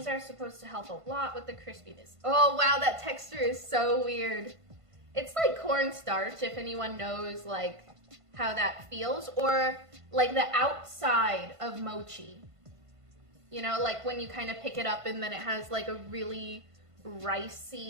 are supposed to help a lot with the crispiness. Oh wow, that texture is so weird. It's like cornstarch, if anyone knows like how that feels, or like the outside of mochi. You know, like when you kind of pick it up and then it has like a really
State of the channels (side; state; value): left; late; 1.5 ms